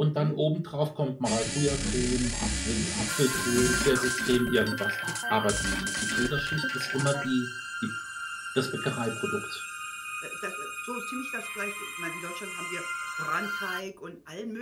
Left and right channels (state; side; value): identical; both; correlation 1.00